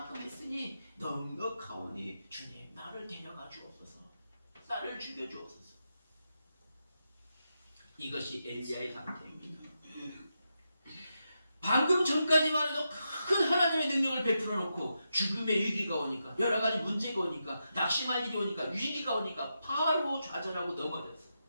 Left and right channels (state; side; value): inverted; both; correlation -0.86